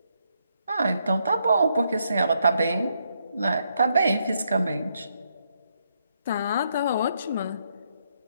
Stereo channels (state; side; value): inverted; both; correlation -0.77